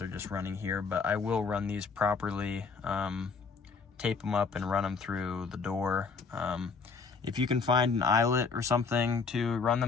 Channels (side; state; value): right; quieter; 4.9 dB